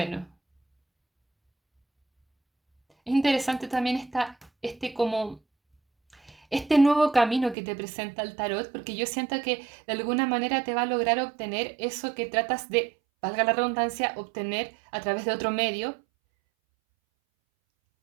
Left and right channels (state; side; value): drops out; left; at 7.6 s